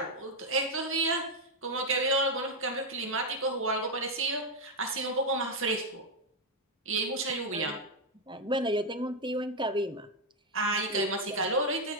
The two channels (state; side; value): normal; both; correlation 0.02